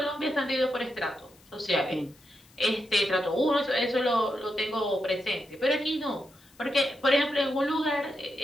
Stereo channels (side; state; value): left; noise; hiss, 29 dB below the sound